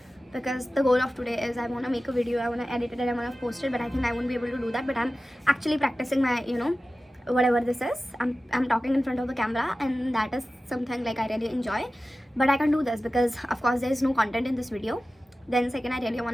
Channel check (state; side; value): normal; both; correlation 0.95